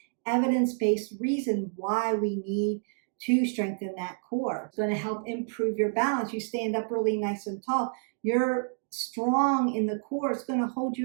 evidence-based reason why we need to strengthen that core. It's going to help improve your balance. You stand up really nice and tall. You're strong in the core. It's going to hold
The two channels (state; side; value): silent; left; digital silence